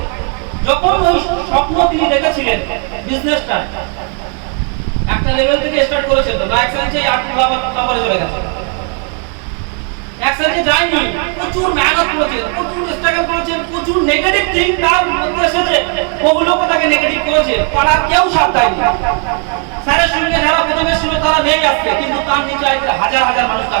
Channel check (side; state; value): left; quieter; 38.2 dB